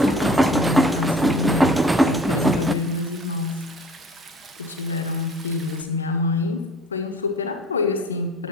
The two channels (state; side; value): normal; both; correlation 0.47